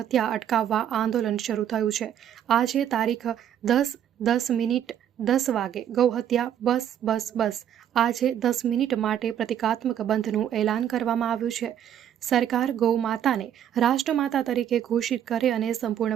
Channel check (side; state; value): left; quieter; 9.9 dB